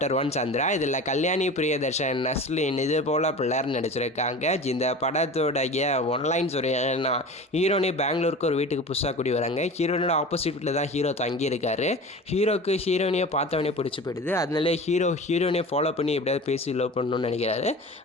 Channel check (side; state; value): both; normal; correlation 0.35